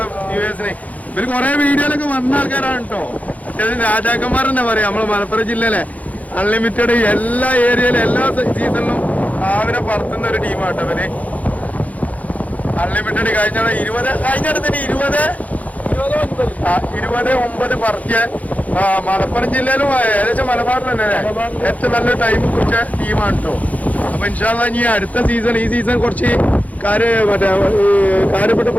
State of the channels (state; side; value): late; right; 0.073 ms